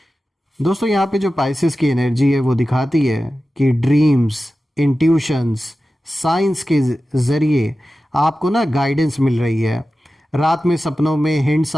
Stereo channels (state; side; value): normal; both; correlation 0.94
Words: दोस्तों, यहाँ पे जो पाइसेस की एनर्जी है वो दिखाती है कि ड्रीम्स, इंट्यूशंस, साइंस के ज़रिए आपको ना गाइडेंस मिल रही है। रात में सपनों में हिंट्स